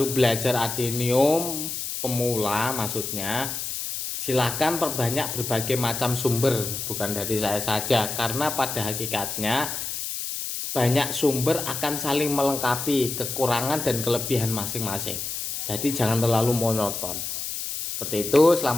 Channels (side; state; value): left; noise; hiss, 5 dB below the sound